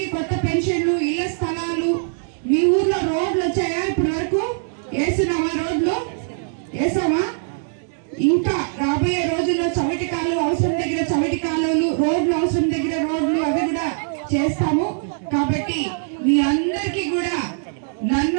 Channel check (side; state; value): left; silent; digital silence